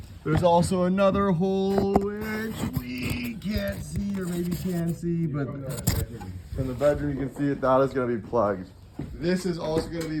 there's also another hole which we can't see, or maybe can see, but from the bedroom you can see it. That is gonna be plugged. This is also gonna be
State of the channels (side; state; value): both; identical; correlation 1.00